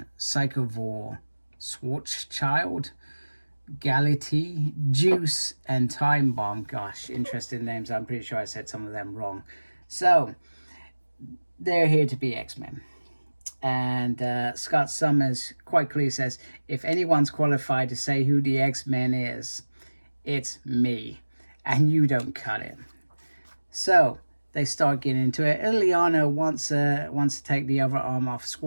Psychovore, Schwarzschild, Galatea, Juice, and Time Bomb. Gosh, interesting names. I'm pretty sure I said some of them wrong. So they're here to be X-Men, and Scott Summers quite clearly says, if anyone's qualified to say who the X-Men is, it's me, and you don't cut it. So they start getting into it. Ileana wants to take the other arm off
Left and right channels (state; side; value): inverted; both; correlation -1.00